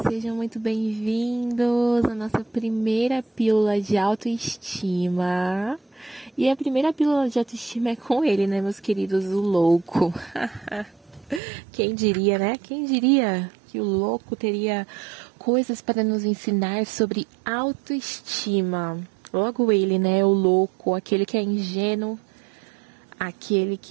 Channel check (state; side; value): drops out; left; at 11.4 s